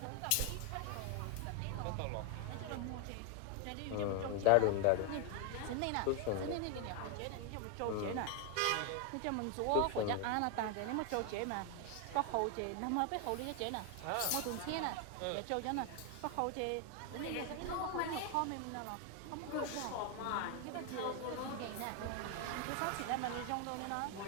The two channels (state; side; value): different; both; correlation 0.00